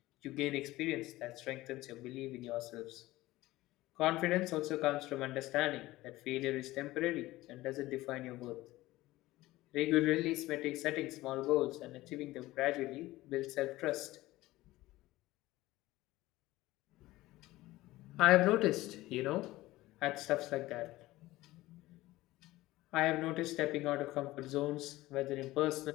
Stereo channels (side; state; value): right; quieter; 17.8 dB